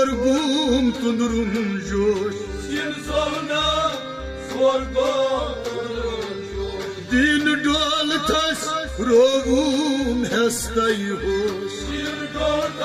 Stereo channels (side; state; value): both; identical; correlation 1.00